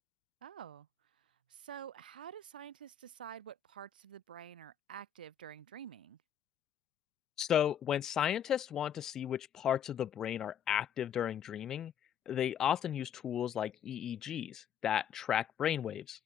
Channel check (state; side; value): quieter; right; 9.1 dB